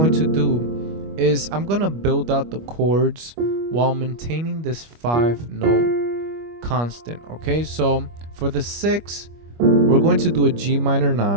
to do is I'm going to build out the chords while maintaining this 5-note constant, okay? So for the 6, we're going to do a G minor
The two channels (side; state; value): left; late; 25 ms